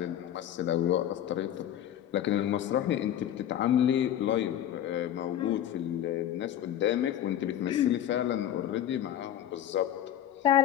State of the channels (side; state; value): right; quieter; 11.0 dB